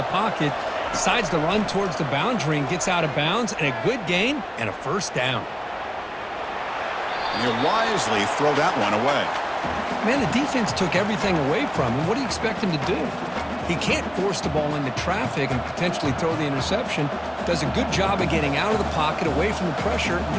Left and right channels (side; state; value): both; identical; correlation 1.00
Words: pocket, decides to run towards the boundary and gets out of bounds, and a good gain and a first down. And he'll wisely throw that one away. Man, the defense took everything away from him. What do you expect him to do? He can't force the ball into traffic and potentially throw the interception. Does a good job of getting out of the pocket, away from the pressure, and